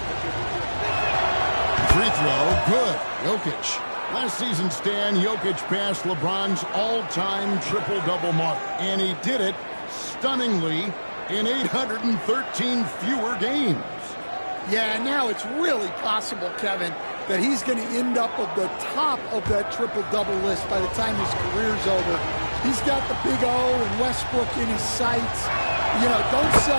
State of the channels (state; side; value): inverted; both; correlation -1.00